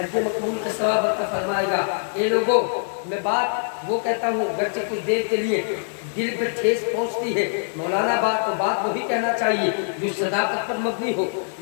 مقبول کا ثواب عطا فرمائے گا۔ اے لوگوں، میں بات وہ کہتا ہوں گرچہ کچھ دیر کے لیے دل پہ ٹھیس پہنچتی ہے، مولانا بات تو بات وہی کہنا چاہیے جو صداقت پر مبنی ہو،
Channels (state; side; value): silent; right; digital silence